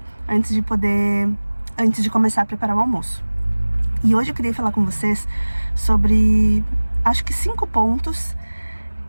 antes de começar a preparar o almoço. E hoje eu queria falar com vocês sobre, acho que 5 pontos,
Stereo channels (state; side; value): inverted; both; correlation -1.00